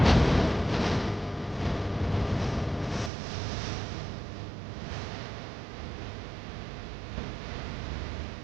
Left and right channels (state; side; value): drops out; left; at 3.1 s